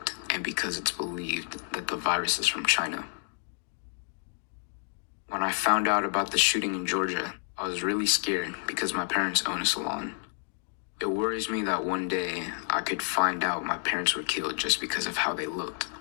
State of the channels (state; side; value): silent; right; 58 dB below the other